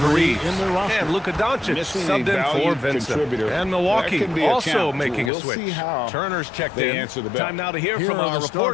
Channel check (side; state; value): right; drops out; at 5.3 s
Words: injury Reeves. in their roster. And Luka Doncic Missing a subbed in for valued Vincent. contributor. And That Milwaukee can be a also challenge. making a We'll switch. see how Turner's checked they in. answer the bell. Time now to hear Here from are our the